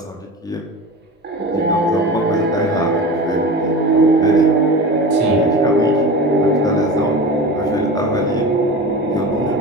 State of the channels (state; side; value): normal; both; correlation 0.31